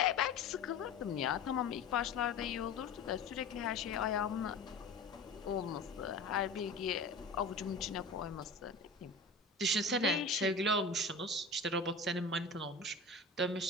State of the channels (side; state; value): right; quieter; 3.2 dB